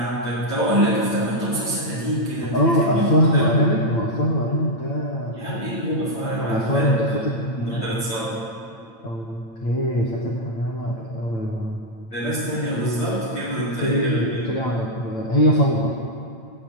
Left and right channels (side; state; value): right; late; 8.9 ms